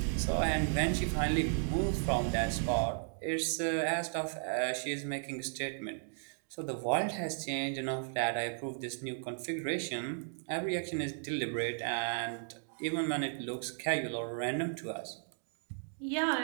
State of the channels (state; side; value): silent; left; digital silence